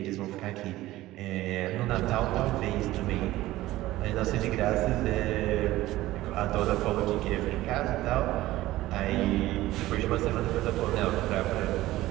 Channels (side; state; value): left; quieter; 16.5 dB